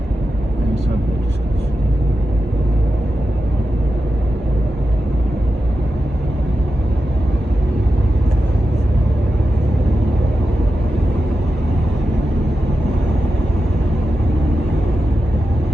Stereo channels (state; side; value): normal; both; correlation 0.90